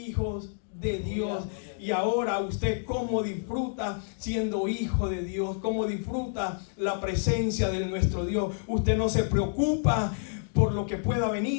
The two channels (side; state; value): right; silent; digital silence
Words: de Dios. Y ahora usted cómo disfruta siendo hijo de Dios, cómo disfruta la presencia de nuestro Dios. Usted no se preocupa por lo que pueda